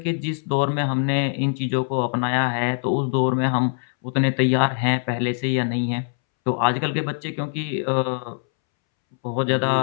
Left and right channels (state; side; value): silent; right; 64 dB below the other